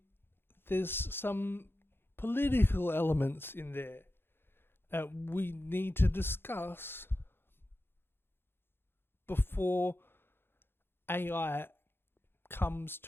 there's some political elements in there that we need to discuss before AI comes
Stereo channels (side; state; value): right; late; 0.11 ms